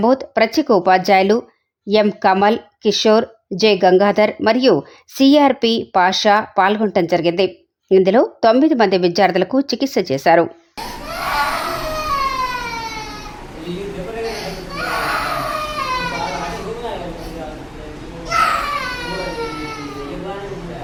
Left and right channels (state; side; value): identical; both; correlation 1.00